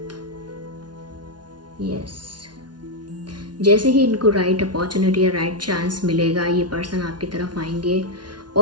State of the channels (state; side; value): late; left; 0.70 ms